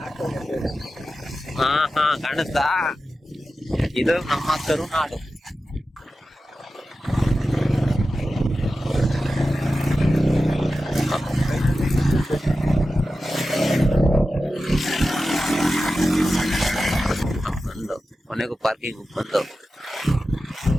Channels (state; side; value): normal; both; correlation 0.93